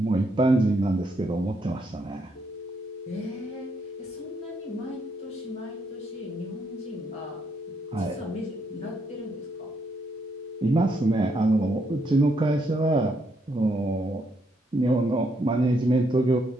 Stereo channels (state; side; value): normal; both; correlation 0.75